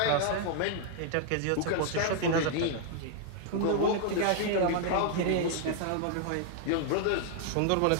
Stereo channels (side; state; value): both; different; correlation 0.00